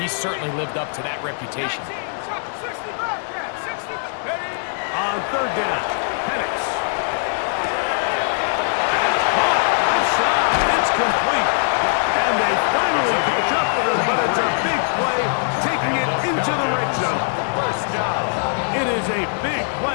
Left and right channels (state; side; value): silent; right; digital silence